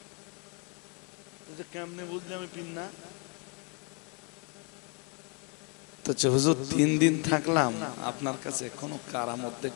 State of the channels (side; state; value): right; quieter; 34.2 dB